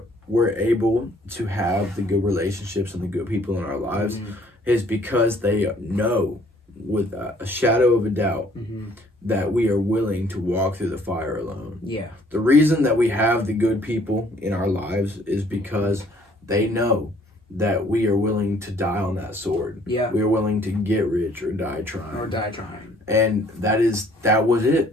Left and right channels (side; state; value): both; normal; correlation 0.60